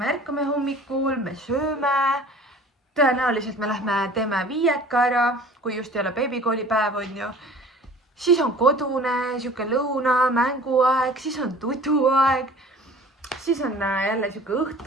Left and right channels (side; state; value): both; normal; correlation 0.45